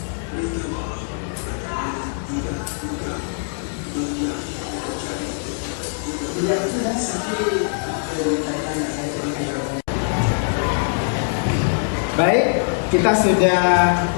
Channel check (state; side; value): silent; right; digital silence